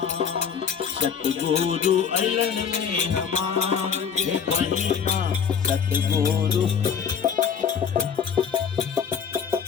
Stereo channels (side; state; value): right; quieter; 7.2 dB